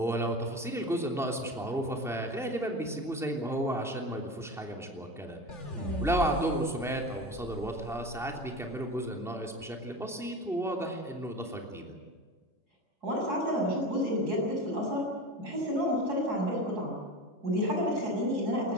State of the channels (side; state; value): both; normal; correlation 0.29